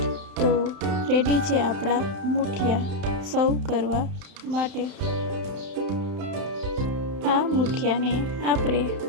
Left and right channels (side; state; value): left; late; 31 ms